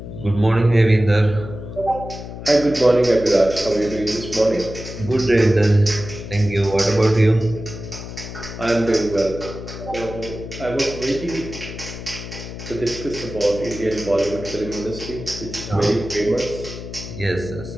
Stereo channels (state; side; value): noise; left; hum, 10 dB below the sound